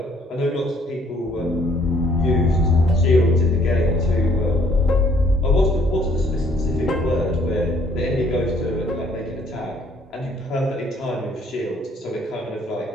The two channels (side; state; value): both; normal; correlation 0.62